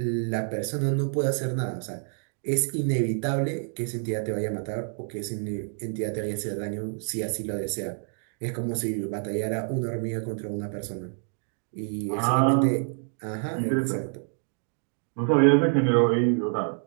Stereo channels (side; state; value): left; silent; 56 dB below the other